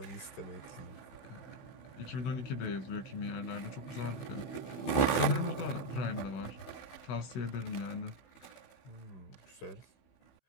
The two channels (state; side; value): late; right; 15 ms